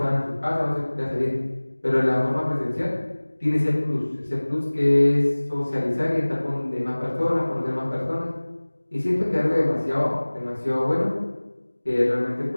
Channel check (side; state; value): both; inverted; correlation -1.00